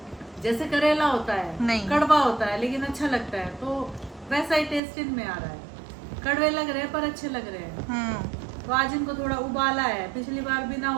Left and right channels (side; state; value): left; drops out; at 4.8 s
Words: जैसे करेला होता है, नहीं। कड़वा होता है लेकिन अच्छा लगता है, तो वैसा ही टेस्ट इनमें आ रहा है। कड़वे लग रहे हैं पर अच्छे लग रहे हैं। तो आज इनको थोड़ा उबाला है, पिछली बार बिना